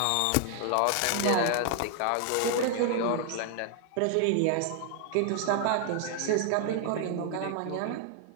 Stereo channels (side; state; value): both; different; correlation 0.00